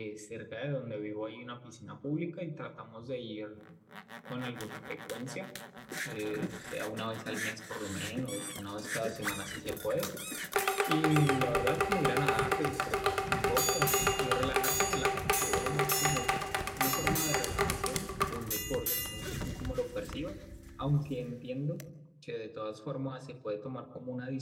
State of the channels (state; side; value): identical; both; correlation 1.00